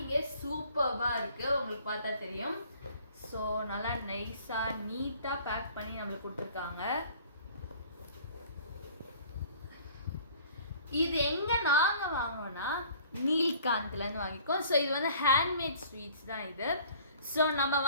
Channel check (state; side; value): inverted; both; correlation -0.52